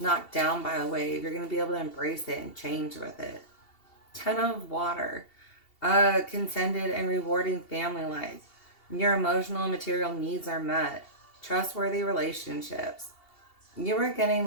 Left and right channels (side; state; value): right; late; 2.8 ms